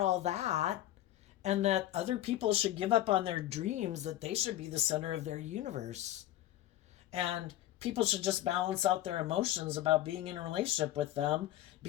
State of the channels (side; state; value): right; quieter; 13.9 dB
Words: that and that other people should give up on their dreams, that they should be the center of their universe. And people should just balance out their emotions about being in a relationship with them